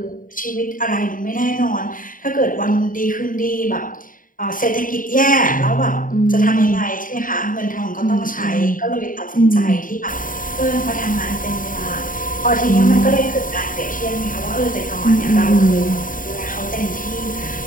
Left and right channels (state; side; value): late; right; 0.39 ms